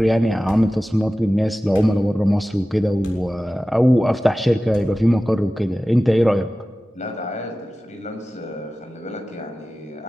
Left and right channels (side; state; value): both; normal; correlation 0.96